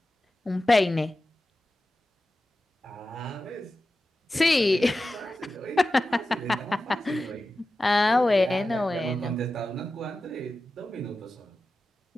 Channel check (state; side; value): normal; both; correlation 0.94